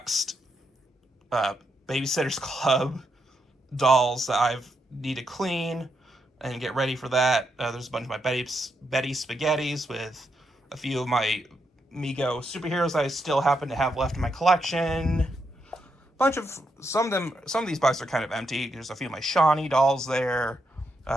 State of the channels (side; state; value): both; normal; correlation 0.81